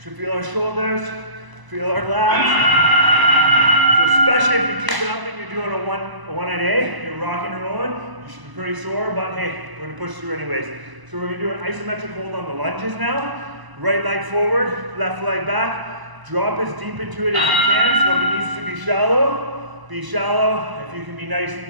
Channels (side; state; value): left; late; 1.0 ms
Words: Should feel our shoulders, feel our lats. So especially if you keep it up and you're doing a one at A, you're rocking and rolling, you should be pretty sore, but hey, we're gonna push through anyways. So we're gonna do an isometric hold on the lunges now. Right leg forward, left leg back. Drop as deep into it as you can, so if it needs to be shallow, be shallow. If you can be nice and